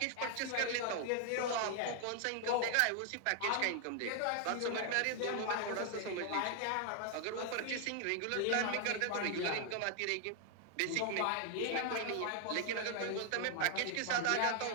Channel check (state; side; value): different; both; correlation 0.00